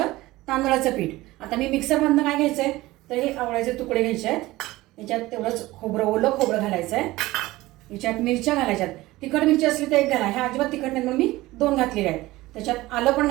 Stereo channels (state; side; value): quieter; left; 18.5 dB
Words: तांदळाचं पीठ. आता मी मिक्सरमधनं काय घ्यायचंय तर हे आवळ्याचे तुकडे घ्यायचे आहेत. याच्यात तेवढंच खोबरं, ओलं खोबरं घालायचं आहे. याच्यात मिरच्या घालायच्यात. तिखट मिरची असली तर 1 घाला, ह्या अजिबात तिखट नाही म्हणून मी 2 घातलेल्या आहेत. त्याच्यात आलं पण